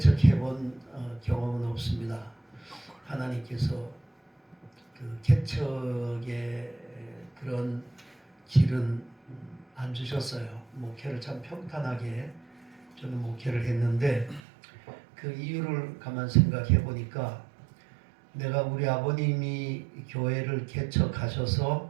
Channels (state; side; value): drops out; left; at 14.4 s